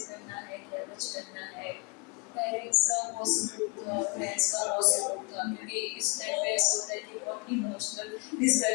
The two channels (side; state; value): right; quieter; 30.8 dB